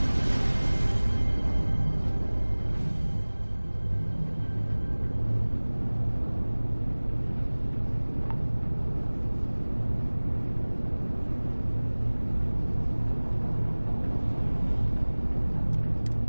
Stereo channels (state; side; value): inverted; both; correlation -1.00